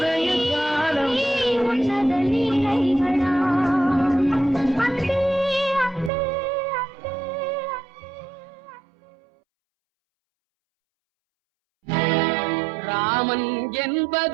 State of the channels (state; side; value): drops out; left; at 6.1 s